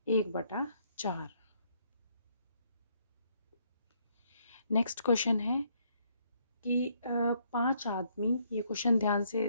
1/4। नेक्स्ट क्वेश्चन है कि 5 आदमी, ये क्वेश्चन ध्यान से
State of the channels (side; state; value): both; inverted; correlation -0.70